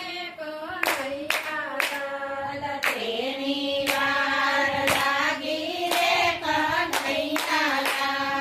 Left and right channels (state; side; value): identical; both; correlation 1.00